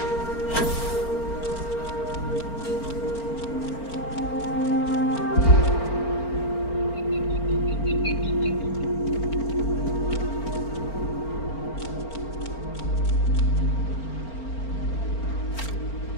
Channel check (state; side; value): late; right; 4.4 ms